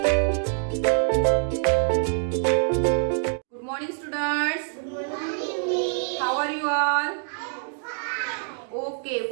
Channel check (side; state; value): left; silent; digital silence